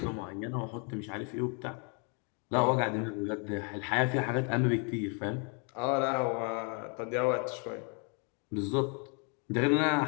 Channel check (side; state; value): right; quieter; 37.6 dB